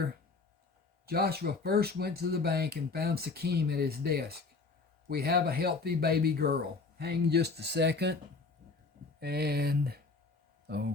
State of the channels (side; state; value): right; quieter; 4.1 dB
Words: Joshua first went to the bank and found Sakim at his desk. We have a healthy baby girl. Hang just a second. And,